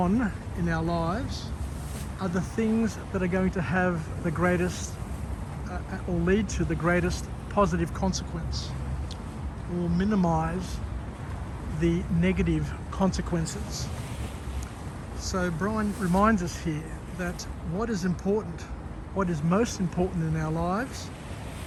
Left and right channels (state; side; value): identical; both; correlation 1.00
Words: our lives are the things that are going to have the greatest or lead to the greatest positive consequence, or minimize the negative consequences. So Brian reminds us here that what is important, what is most important in our lives,